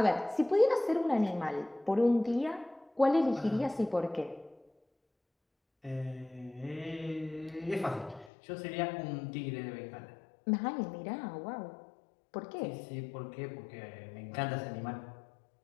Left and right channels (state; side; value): drops out; right; at 8.3 s